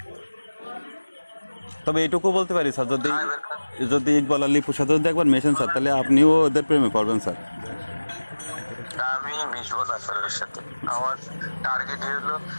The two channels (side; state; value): both; inverted; correlation -1.00